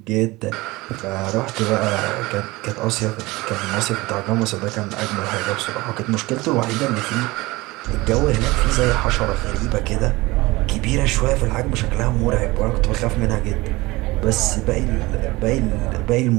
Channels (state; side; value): quieter; left; 21.2 dB